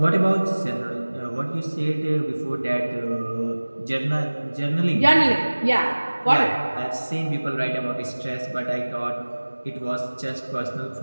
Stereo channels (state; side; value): inverted; both; correlation -1.00